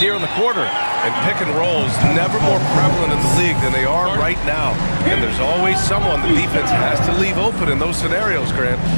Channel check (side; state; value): both; inverted; correlation -1.00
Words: here in the quarter. And pick and rolls never more prevalent in the league than they are right now. And there's always someone the defense has to leave open in those scenarios, Grant.